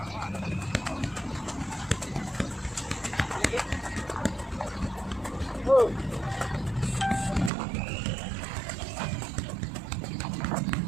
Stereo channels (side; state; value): left; drops out; at 7.5 s